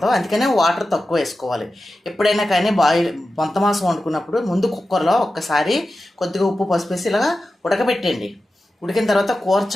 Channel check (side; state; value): both; normal; correlation 0.93